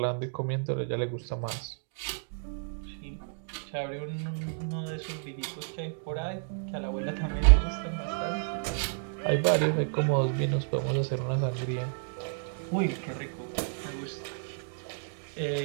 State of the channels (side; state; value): left; silent; digital silence